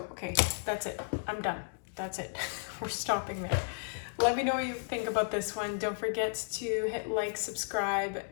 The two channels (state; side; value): silent; right; digital silence